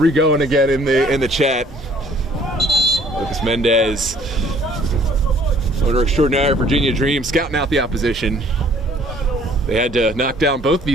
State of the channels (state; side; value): normal; both; correlation 0.57